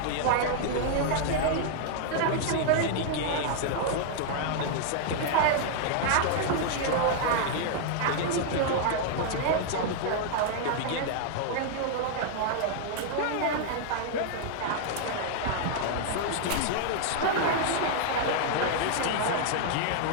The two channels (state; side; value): different; both; correlation -0.01